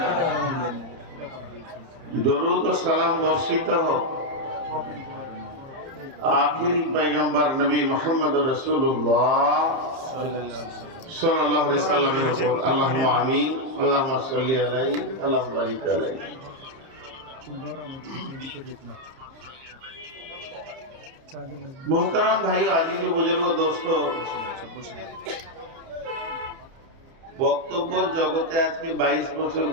দরুদ ও সালাম বর্ষিত হোক আখিরি পয়গম্বর নবী মুহাম্মদ রাসূলুল্লাহ সাল্লাল্লাহু আলাইহি সাল্লামের উপর। আল্লাহুম্মা আমিন। আল্লাহুম্মা সাল্লি আলাইহি আল্লাহুম্মা বারিক আলাইহি। মোহতারাম ভাই, আজিজ ও বুজুর্গ দোস্ত, বক্তব্যের জগতে আজকে 22 বছর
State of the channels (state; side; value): late; left; 30 ms